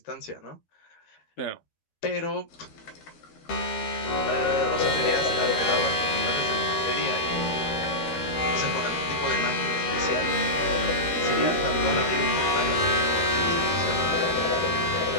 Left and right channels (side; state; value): right; late; 13 ms